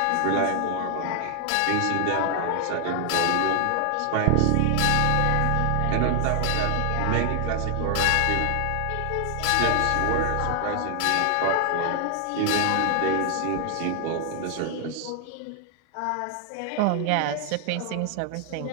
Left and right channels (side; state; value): both; different; correlation 0.00